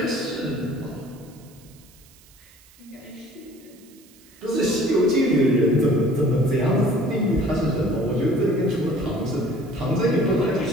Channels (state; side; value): noise; right; hiss, 26 dB below the sound